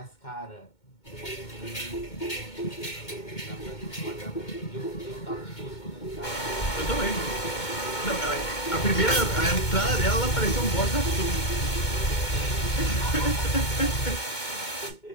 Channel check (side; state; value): right; late; 2.2 ms